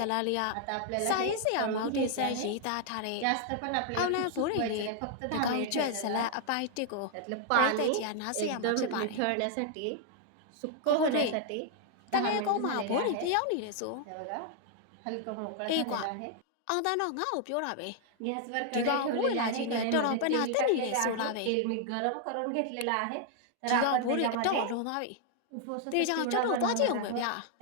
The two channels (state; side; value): different; both; correlation 0.00